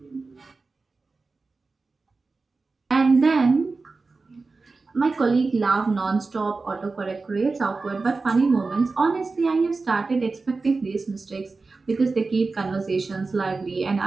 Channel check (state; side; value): quieter; left; 3.9 dB